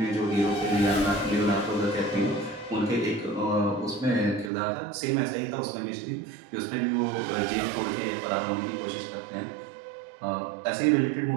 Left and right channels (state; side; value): drops out; left; at 4.5 s